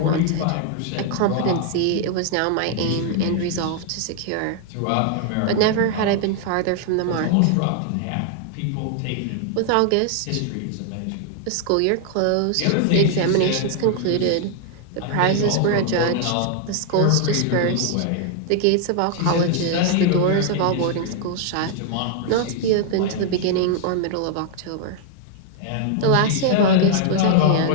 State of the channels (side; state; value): both; different; correlation 0.00